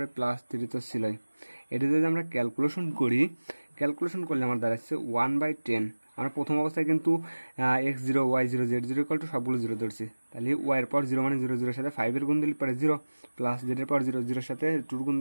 +3 তো ছিলই। এটা যদি আমরা ক্যালকুলেশন করি, ক্যালকুলেশন করলে আমার দাঁড়াচ্ছে 1/10। আমরা প্রথম অবস্থায় কিন্তু x0 y0 z0 সবগুলো 0 ধরছি। তাহলে ওয়াইয়ের পাওয়ার 0 মানে 0, 0 সাথে 5-এর গুণ দিলে পারে 0, প্লাস জেডের পাওয়ার 0, 0 সাথে 2 গুণ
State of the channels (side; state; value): both; inverted; correlation -1.00